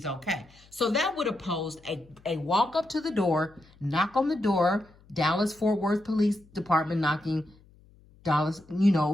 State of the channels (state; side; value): noise; left; hum, 28 dB below the sound